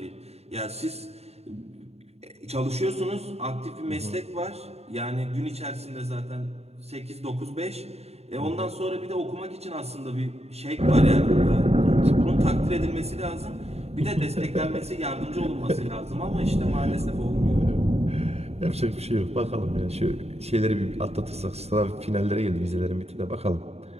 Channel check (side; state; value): left; late; 0.30 ms